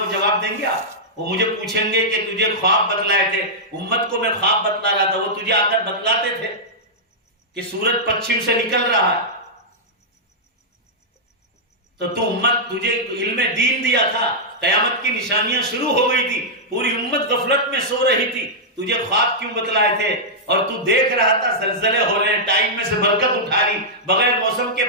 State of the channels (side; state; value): both; normal; correlation -0.09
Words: جواب دیں گے. آپ وہ مجھے پوچھیں گے کہ تجھے خواب بتلائے تھے، امت کو میں خواب بتلا رہا تھا، وہ تجھے آ کر بتلاتے تھے کہ سورج پچھم سے نکل رہا ہے، تو امت تجھے علم دین دیا تھا، قیامت کی نشانیاں شروع ہو گئی تھی، پوری امت غفلت میں سو رہی تھی، تجھے خواب کیوں بتلائے تھے؟ اور تو دیکھ رہا تھا زلزلے ہو رہے ہیں، ٹائم میں سے برکت اٹھا رہی، بغیر موسم کے